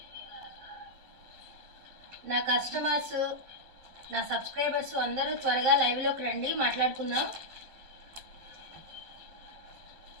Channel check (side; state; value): left; late; 12 ms